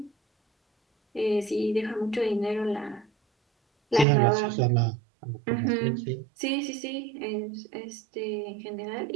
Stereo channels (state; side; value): drops out; left; at 4.0 s